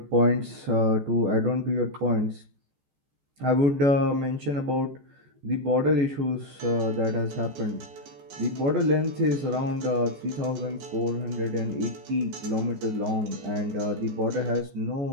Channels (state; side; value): late; left; 14 ms